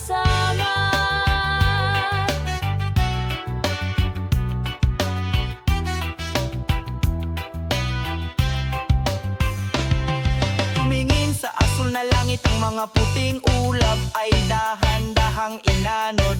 Ang mga puting ulap ay dahan-dahang inanod.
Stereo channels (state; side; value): identical; both; correlation 1.00